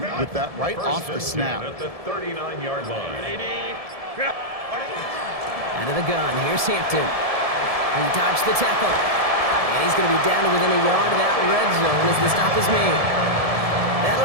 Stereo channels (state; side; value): late; left; 1.7 ms